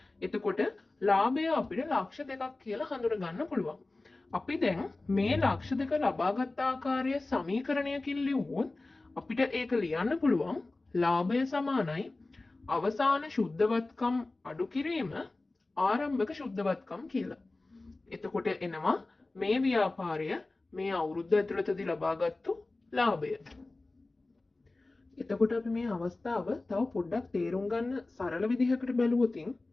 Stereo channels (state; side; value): quieter; right; 3.1 dB